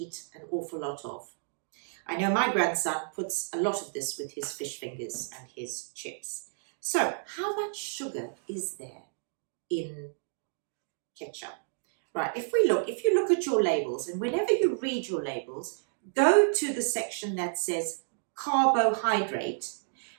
an awful lot of. I know my grandson puts a lot of this with his fish fingers and his chips. So, how much sugar is there in ketchup? Right, if you look at your labels, and whenever you read your labels, go to the section that says carbohydrate,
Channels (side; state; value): left; silent; digital silence